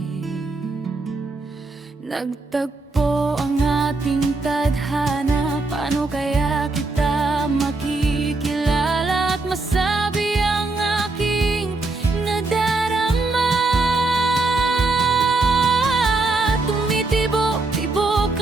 Nagtagpo ang ating tadhana, paano kaya kita makikilala at masabi ang aking nadarama? Tumitibok-tibok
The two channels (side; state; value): left; quieter; 3.4 dB